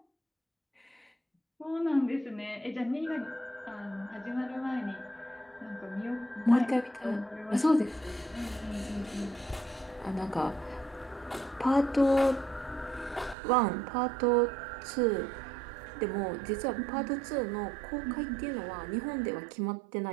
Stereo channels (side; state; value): left; drops out; at 13.4 s